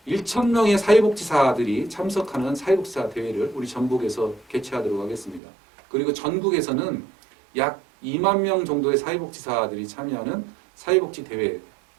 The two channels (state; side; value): drops out; left; at 5.4 s